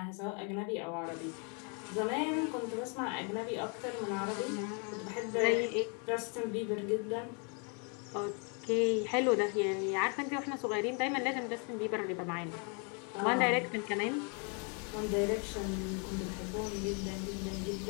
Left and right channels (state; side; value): quieter; right; 37.3 dB